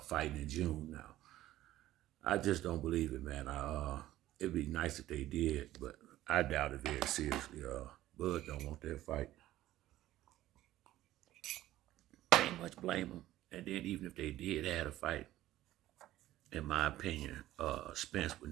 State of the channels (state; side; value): quieter; left; 14.7 dB